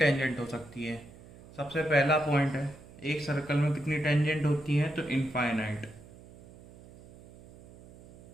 हो सकती है, सबसे पहला पॉइंट है एक सर्कल में कितनी टेंजेंट होती है, तो इनफाइनाइट।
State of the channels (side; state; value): right; noise; hum, 21 dB below the sound